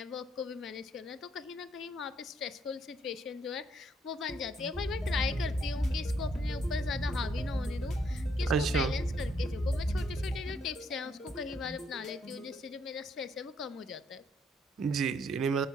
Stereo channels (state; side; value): normal; both; correlation 0.72